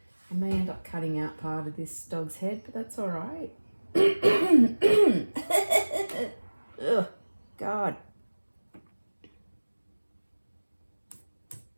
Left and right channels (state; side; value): inverted; both; correlation -1.00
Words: I may end up cutting out part of this dog's head, but that's all right. Ugh, God.